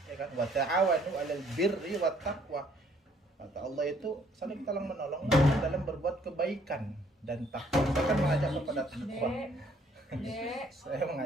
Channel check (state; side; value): normal; both; correlation 0.63